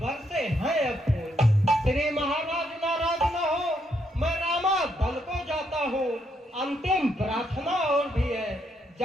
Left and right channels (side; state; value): both; normal; correlation 0.76